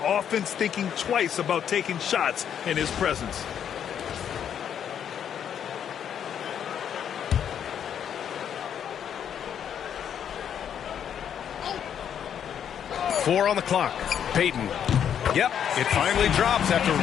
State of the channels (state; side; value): quieter; right; 8.8 dB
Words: offense thinking twice about taking shots in his presence. Four on the clock. Payton. Yep, it finally drops after